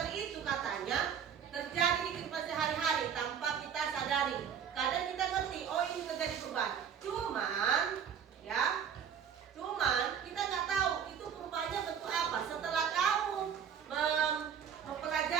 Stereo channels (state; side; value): quieter; left; 7.9 dB